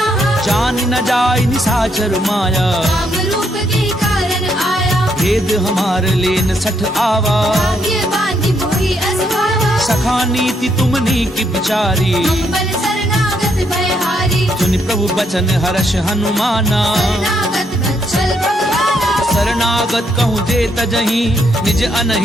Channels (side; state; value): both; normal; correlation 0.75